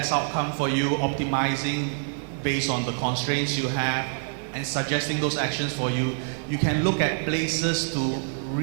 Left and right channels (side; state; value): left; silent; digital silence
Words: outcome for you, optimizing based on the constraints you have, and suggesting those actions for you. You can look at places to